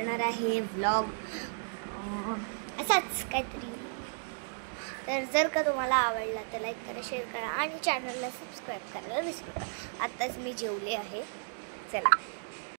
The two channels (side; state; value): left; silent; digital silence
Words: आहे व्लॉग असाच काहीतरी. तर जर का तुम्हाला आवडला तर लाईक करा, शेअर करा आणि चॅनलला सबस्क्राईब करायला विसरू नका. आत्ताच मी जेवले आहे. चला,